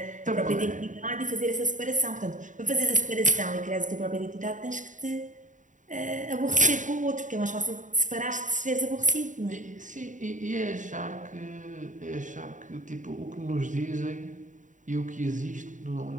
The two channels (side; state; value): left; late; 0.37 ms